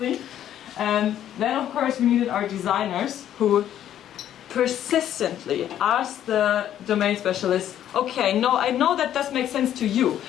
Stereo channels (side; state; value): right; quieter; 11.0 dB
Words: And then of course we needed our designers who persistently asked the domain specialist, okay, no, I know that does make sense to you,